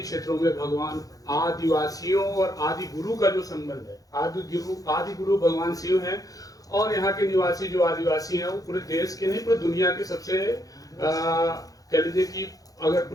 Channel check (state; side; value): late; right; 0.17 ms